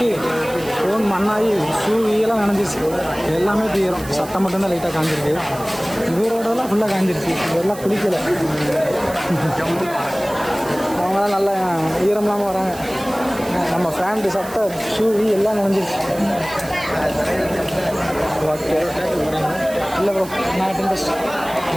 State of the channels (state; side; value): noise; right; hiss, 16 dB below the sound